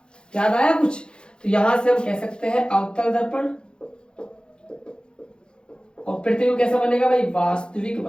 याद आया कुछ? तो यहां से हम कह सकते हैं अवतल दर्पण, और प्रतिबिंब कैसा बनेगा भाई? वास्तविक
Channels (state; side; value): late; right; 0.050 ms